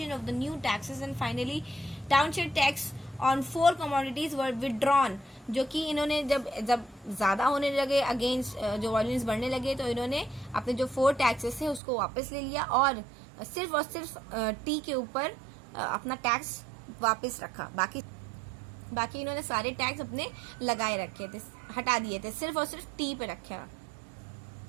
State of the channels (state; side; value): drops out; left; at 11.8 s